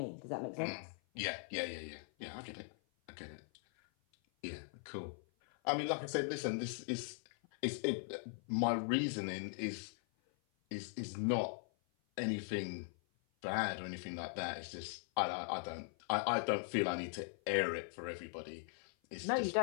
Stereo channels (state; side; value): silent; right; 51 dB below the other